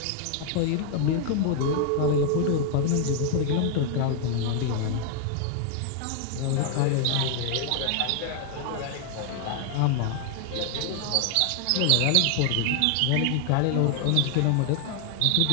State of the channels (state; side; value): different; both; correlation 0.00